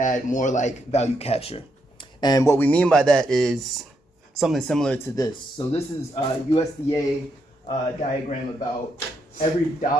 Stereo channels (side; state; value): both; normal; correlation 0.79